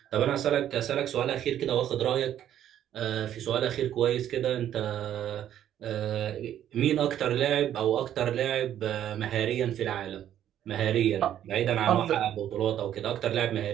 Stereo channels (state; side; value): quieter; left; 11.0 dB